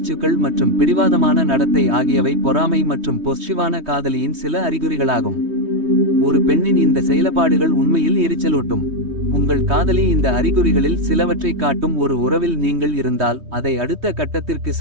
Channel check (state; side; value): late; left; 3.2 ms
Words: மற்றும் பிடிவாதமான நடத்தை ஆகியவை பொறாமை மற்றும் பொஸ்சிவான காதலியின் சில அறிகுறிகளாகும். ஒரு பெண்ணின் இந்த செயல்பாடுகள் உண்மையில் எரிச்சலூட்டும். உங்கள் காதலி இந்த அறிகுறிகளில் சிலவற்றை காட்டும் ஒரு உறவில் நீங்கள் இருந்தால் அதை அடுத்த கட்டத்திற்கு